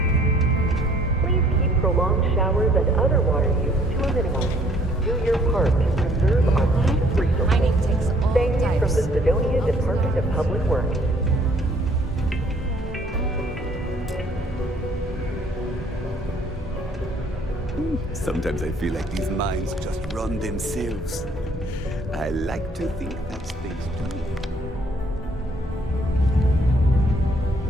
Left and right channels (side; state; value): both; normal; correlation 0.61